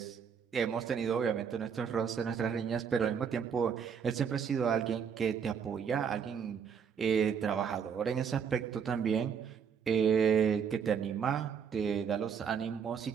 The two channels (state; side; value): quieter; left; 7.1 dB